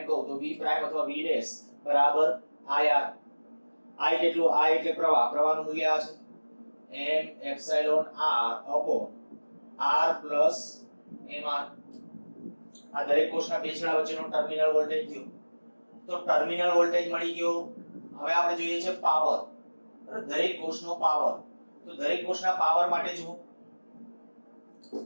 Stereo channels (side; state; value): both; inverted; correlation -1.00